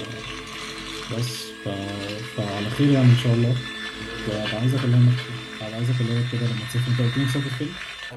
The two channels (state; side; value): identical; both; correlation 1.00